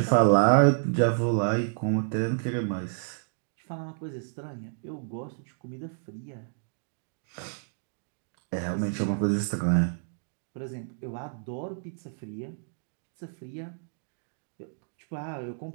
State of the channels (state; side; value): silent; left; digital silence